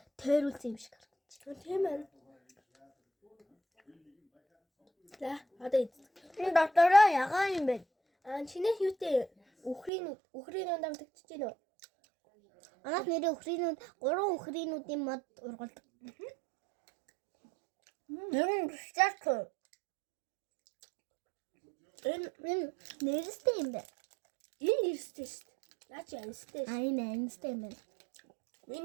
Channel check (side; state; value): left; drops out; at 9.9 s